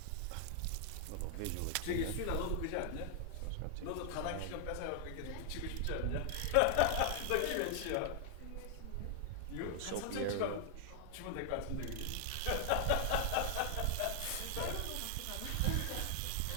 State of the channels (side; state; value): both; different; correlation 0.00